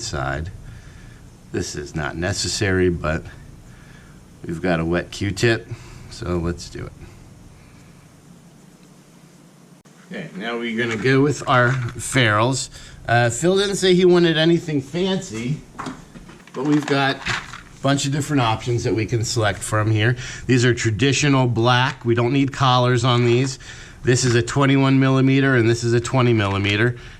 This is not necessary, but we've got a wet Q-tip, so let's do it. Okay, now we're gonna go with our ferrules. Phil didn't say he wanted anything fancy, but we've got bunch of different options that we can select from here. These are traditional black. We don't need collars on these. This is a 21 millimeter and this is a 20 millimeter.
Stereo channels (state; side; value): identical; both; correlation 1.00